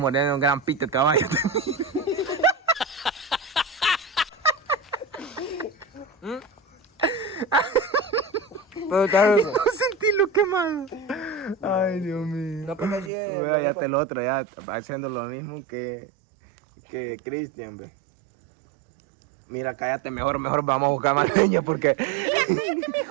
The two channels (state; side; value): drops out; left; at 13.1 s